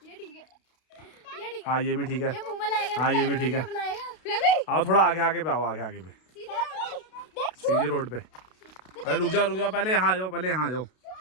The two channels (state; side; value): late; right; 32 ms